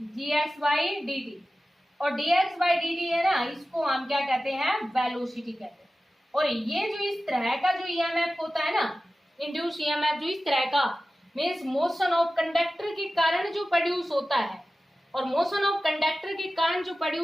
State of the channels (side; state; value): both; normal; correlation 0.95